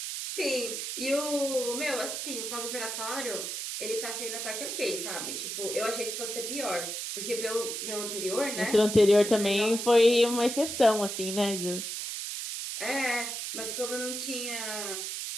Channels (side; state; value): right; noise; hiss, 4 dB below the sound